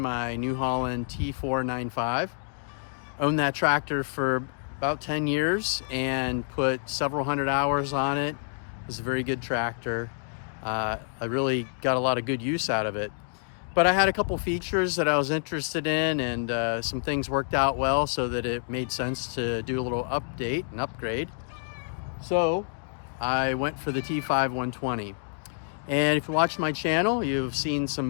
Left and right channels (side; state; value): right; silent; digital silence